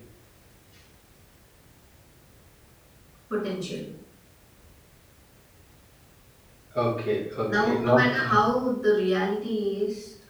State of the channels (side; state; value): both; identical; correlation 1.00